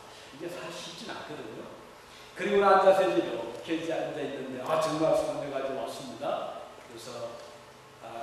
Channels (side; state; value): both; identical; correlation 1.00